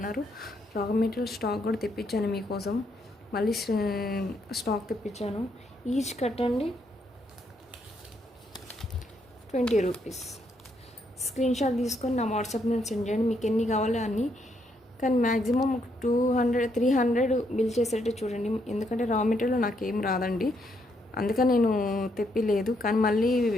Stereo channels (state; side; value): normal; both; correlation 0.75